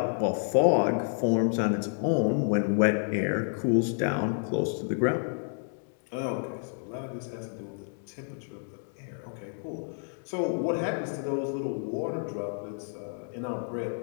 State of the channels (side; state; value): right; silent; digital silence